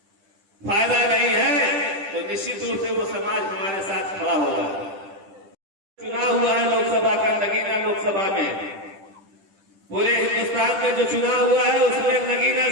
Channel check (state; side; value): late; left; 10 ms